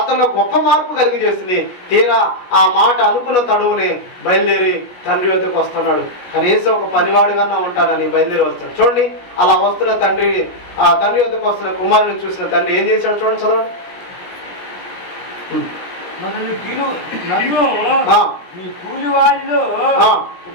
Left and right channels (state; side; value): late; right; 17 ms